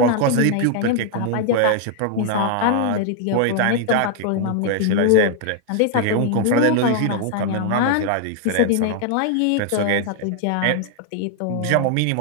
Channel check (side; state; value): both; different; correlation 0.00